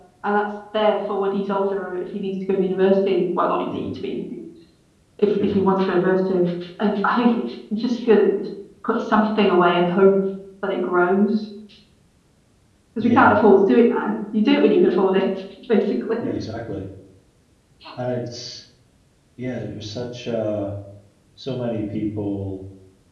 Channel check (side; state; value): both; identical; correlation 1.00